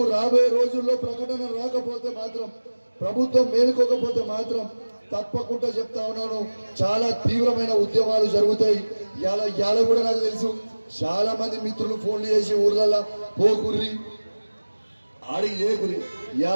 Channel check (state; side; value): inverted; both; correlation -1.00